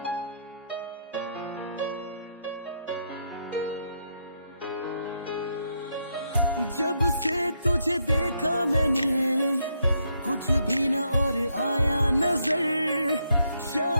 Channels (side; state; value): both; inverted; correlation -0.77